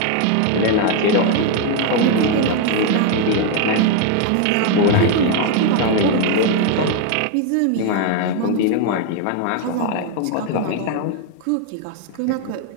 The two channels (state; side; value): different; both; correlation 0.01